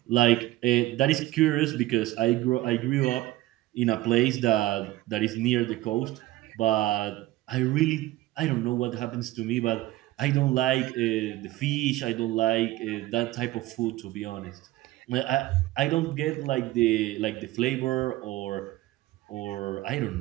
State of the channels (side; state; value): left; quieter; 17.1 dB